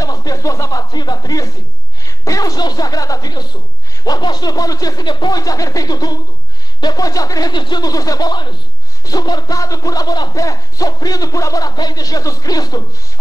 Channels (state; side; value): normal; both; correlation 0.54